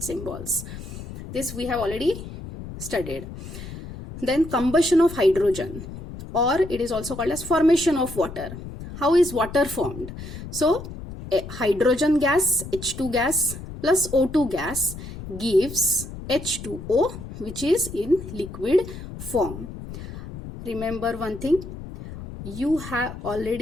symbols. This we have already studied. Then combustion of hydrogen, or it is also called as formation of water. How is water formed? So hydrogen gas, H2 gas plus O2 gas gives H2O, which is in liquid form. Remember one thing, you have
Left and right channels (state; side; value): noise; left; rumble, 11 dB below the sound